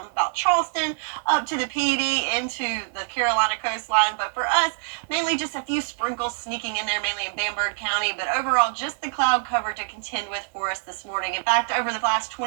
about Charleston up to the PED into the Carolina coastline. But for us, mainly just a few sprinkles sneaking in there, mainly in Bamberg County. But overall, just the cloud cover to contend with for us this morning. In fact, over the last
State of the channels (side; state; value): left; silent; digital silence